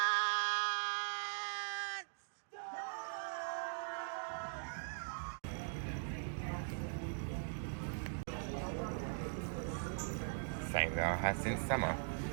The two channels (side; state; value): left; silent; digital silence